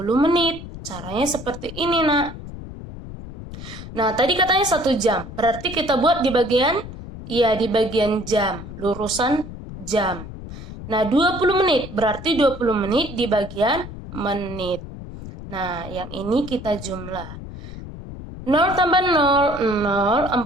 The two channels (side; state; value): left; noise; rumble, 12 dB below the sound